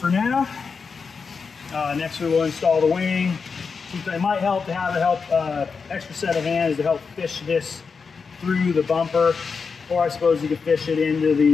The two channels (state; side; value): quieter; right; 5.3 dB